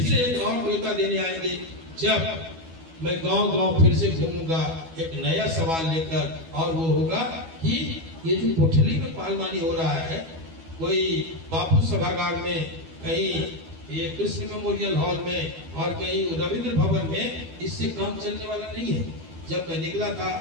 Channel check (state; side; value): late; left; 12 ms